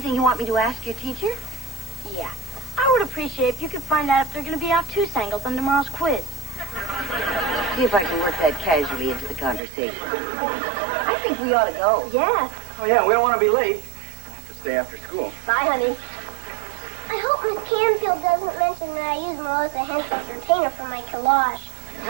you want me to ask your teacher? Yeah. I would appreciate if you could find out if they're going to be obtuse-angles on tomorrow's quiz. See if I can work that casually into the conversation. I think we ought to go. Yeah. Oh, yeah, we don't want to be late. I have to stay after school. Bye, honey. I hope Miss Canfield doesn't mention that I use Melissa Henson's retainer for my collage.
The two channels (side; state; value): left; drops out; at 9.6 s